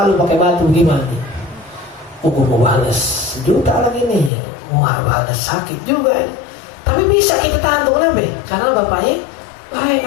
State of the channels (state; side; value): drops out; right; at 4.3 s